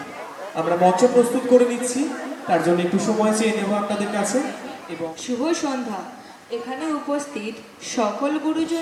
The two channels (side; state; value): both; identical; correlation 1.00